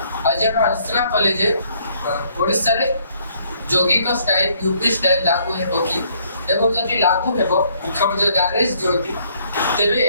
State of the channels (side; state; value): both; inverted; correlation -0.65